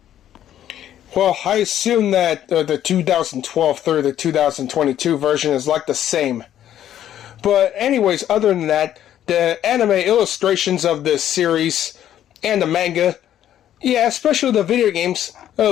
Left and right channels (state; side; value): quieter; right; 11.2 dB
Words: Well, I assume that the 2012 through the 2022 version is like the same. But anyways, other than that, the anime illustrations of this series and the manga, yeah, especially the video games,